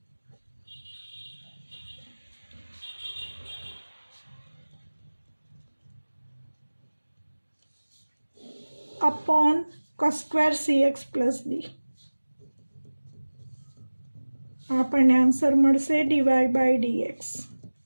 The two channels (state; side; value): inverted; both; correlation -1.00